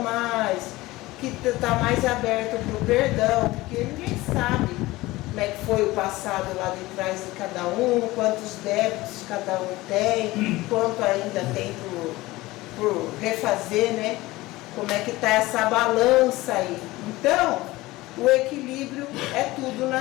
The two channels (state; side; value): quieter; right; 19.3 dB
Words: que está mais aberto para o perdão, porque ninguém sabe como é que foi o passado lá de trás de cada um, quantos débitos cada um tem, quanto ainda tem por refazer, né? Como é que está essa balança aí. Então, o equilíbrio é tudo